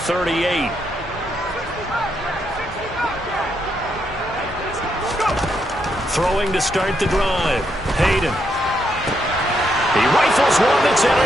Throwing to start the drive. Hayden. He rifles one that's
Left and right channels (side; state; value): both; normal; correlation 0.79